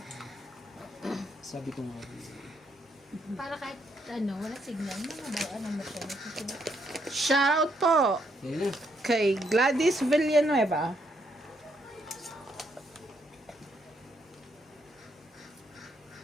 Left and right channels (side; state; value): both; normal; correlation 0.75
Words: Sabi ko nga. Para kahit ano, wala signal, mga ba, ano mo siya, nasusulat. Shoutout po Kaya na. kay Gladys Villanueva.